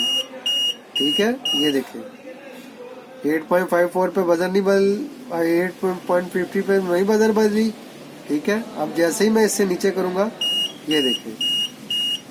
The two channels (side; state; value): both; identical; correlation 1.00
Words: ठीक है, ये देखें 8.54 पे बजर नहीं बल, 8.50 पे नहीं बजर बज रही। ठीक है, अब जैसे ही मैं इससे नीचे करूंगा ये देखें,